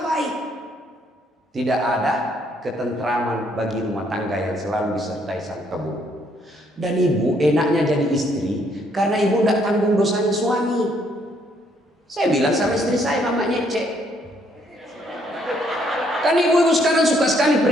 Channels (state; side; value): normal; both; correlation 0.69